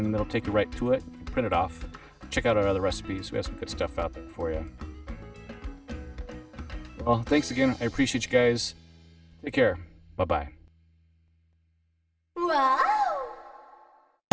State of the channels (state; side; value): identical; both; correlation 1.00